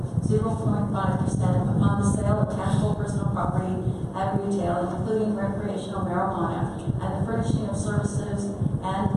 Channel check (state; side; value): identical; both; correlation 1.00